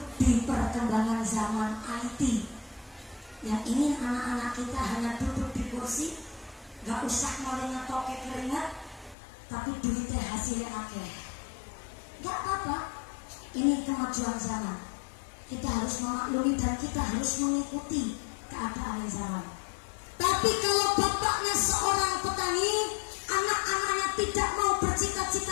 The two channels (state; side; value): drops out; right; at 9.2 s